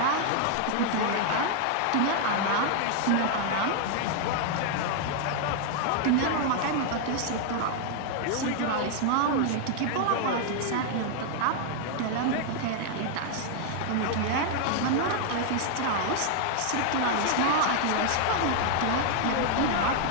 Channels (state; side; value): different; both; correlation 0.00